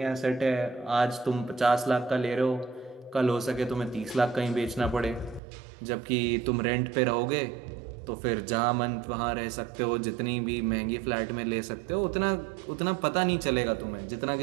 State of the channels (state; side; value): drops out; left; at 5.4 s